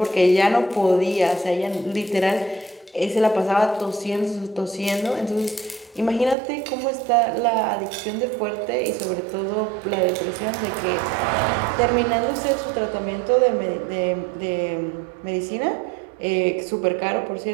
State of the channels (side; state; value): left; drops out; at 6.4 s